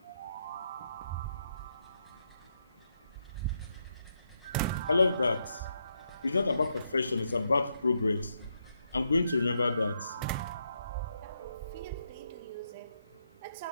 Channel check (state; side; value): inverted; both; correlation -0.79